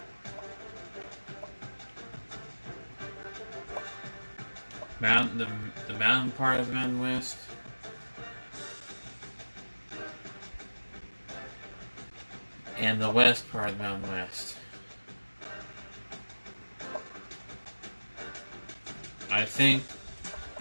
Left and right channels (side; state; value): both; inverted; correlation -1.00